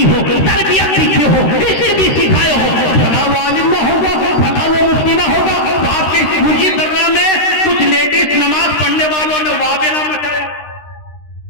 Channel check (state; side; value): late; right; 13 ms